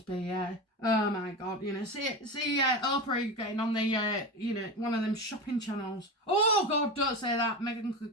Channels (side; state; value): both; normal; correlation 0.23